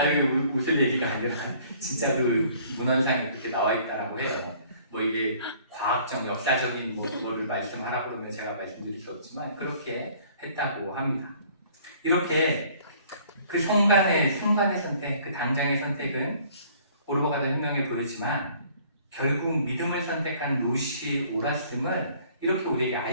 웃을 얘기가 아니라 진짜 그 문헌상에 그렇게 나와 있다라고 해요. 뭐 이게 과학적, 역사적인 뭐를 말씀하라고 그러면 제가 말씀드릴 수 없지만 그렇게 했다고 합니다. 이렇게 그 순간의 선택, 그 당장의 선택은 오르바가 된 혁명에 보였지만 결국 믿음을 선택한 룻이 옳았음을 이렇게 우리에게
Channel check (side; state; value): both; inverted; correlation -0.56